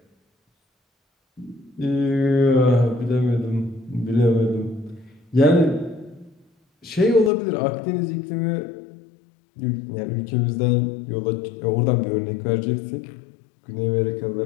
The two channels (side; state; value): right; drops out; at 7.3 s